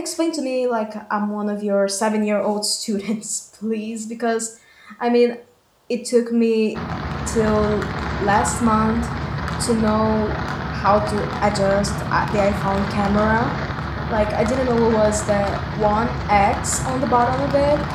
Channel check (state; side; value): identical; both; correlation 1.00